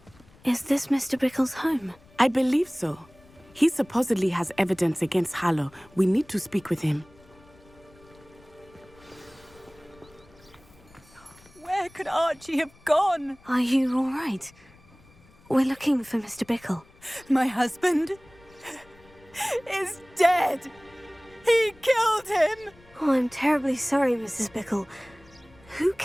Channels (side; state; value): left; noise; rumble, 27 dB below the sound